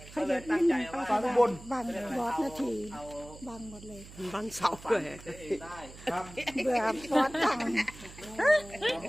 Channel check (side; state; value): right; noise; hum, 17 dB below the sound